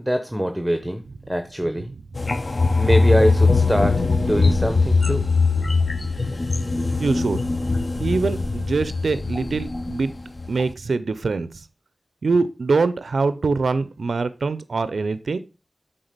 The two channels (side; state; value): both; normal; correlation 0.92